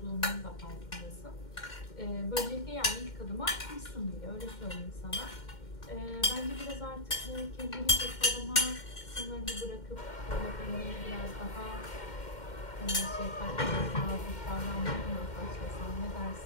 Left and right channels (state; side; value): late; right; 2.1 ms